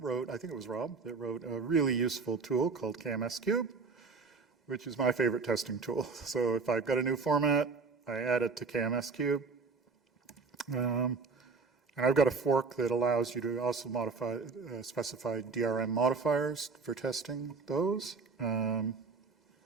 I think it was Rob, that wrote a really useful tool called KMS Cube, which is my favorite testing tool. So if I've got a new format, I add it to KMS Cube. And I've got a fork that allows you to also modify, specify DRM modifiers for testing those.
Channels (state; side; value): quieter; left; 4.6 dB